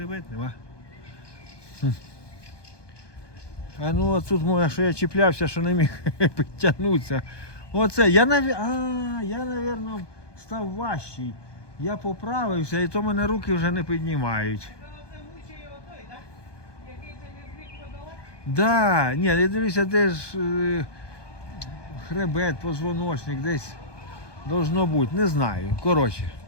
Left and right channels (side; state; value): right; late; 1.2 ms